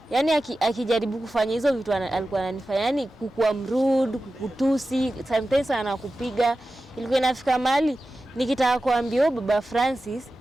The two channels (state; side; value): normal; both; correlation 0.94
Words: yani akijaribu kufanya hizo vitu alikuwa ananifanya, yani kukua mrude, kukutusi, sometimes anakupiga. Ilikuwa inafika mahali nikitaka kuambia Baba Francis